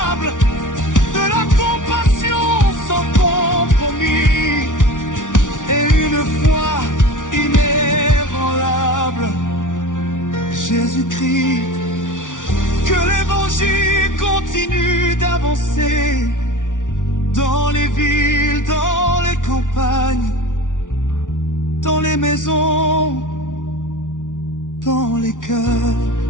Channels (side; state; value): right; late; 0.87 ms